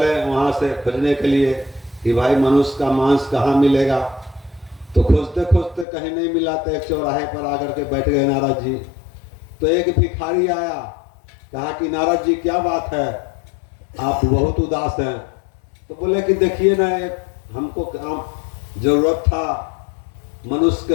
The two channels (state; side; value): drops out; right; at 5.9 s